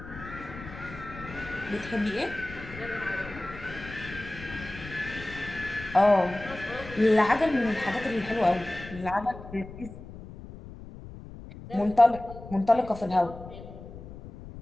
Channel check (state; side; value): noise; left; rumble, 14 dB below the sound